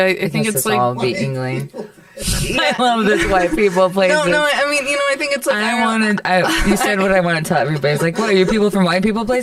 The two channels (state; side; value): identical; both; correlation 1.00